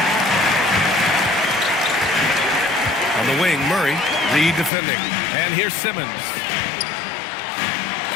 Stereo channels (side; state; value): right; drops out; at 4.7 s